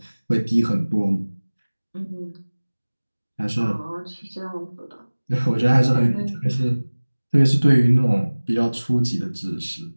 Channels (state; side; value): inverted; both; correlation -1.00